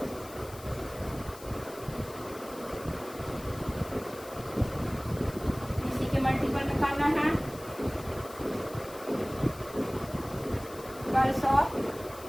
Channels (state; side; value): noise; left; hiss, 18 dB below the sound